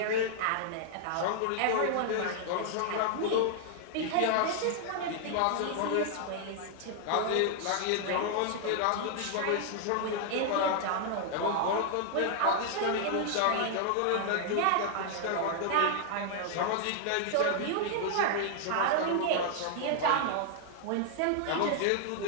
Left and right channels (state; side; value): different; both; correlation 0.00